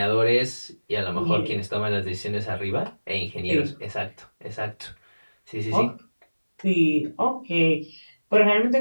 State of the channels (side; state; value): both; inverted; correlation -1.00